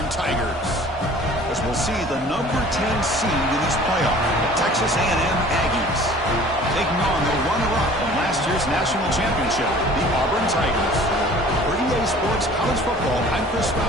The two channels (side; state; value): both; normal; correlation 0.48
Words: Tigers. As we'll see the number 10 seed in this playoff, the Texas A&M Aggies, taking on the runner-up from last year's national championship, the Auburn Tigers. For EA Sports College Football, I'm Chris